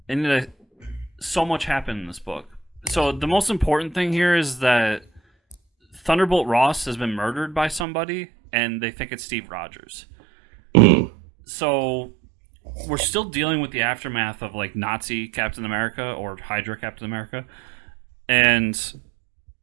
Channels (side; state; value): left; drops out; at 7.9 s